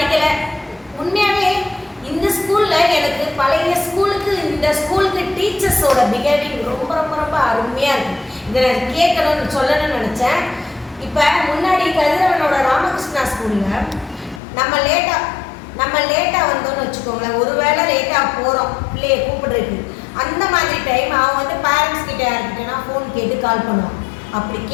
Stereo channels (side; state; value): right; drops out; at 14.4 s